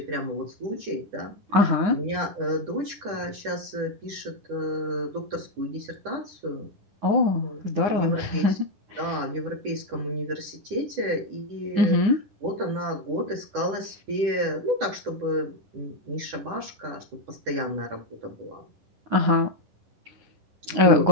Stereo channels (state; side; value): late; left; 10 ms